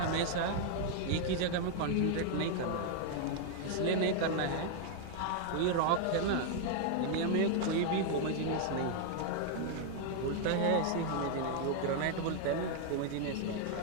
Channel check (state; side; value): different; both; correlation 0.00